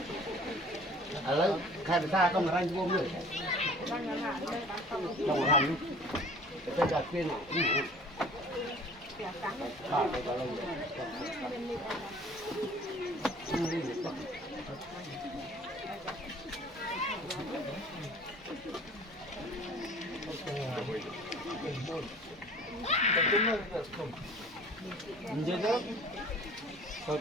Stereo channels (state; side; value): normal; both; correlation 0.48